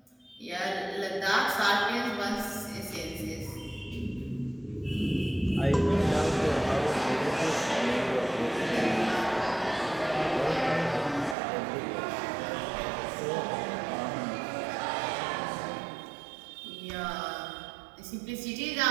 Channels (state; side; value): drops out; left; at 11.4 s